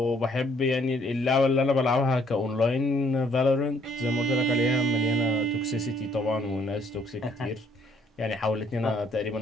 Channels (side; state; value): both; normal; correlation 0.65